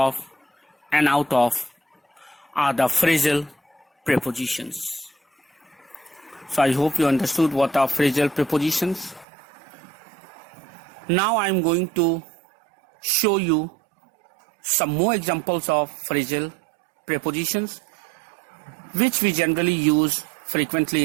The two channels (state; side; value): drops out; left; at 9.2 s